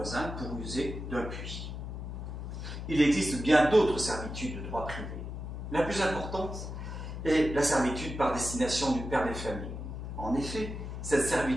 pour user d'un puits. Il existe bien d'autres servitudes de droit privé. La plus importante est la servitude par destination du père des familles. En effet, cette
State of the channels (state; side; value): noise; left; hum, 7 dB below the sound